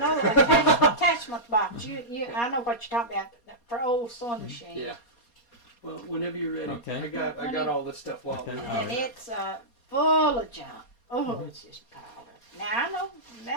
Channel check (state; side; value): late; right; 4.2 ms